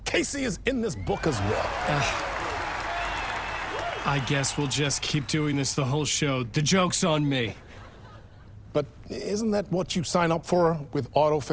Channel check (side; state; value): both; identical; correlation 1.00